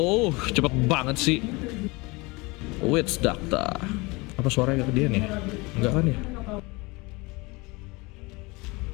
cepet banget sih. Witch Doctor. Apa suaranya ke dia nih? Enggak kan ya?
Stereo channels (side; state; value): right; quieter; 25.1 dB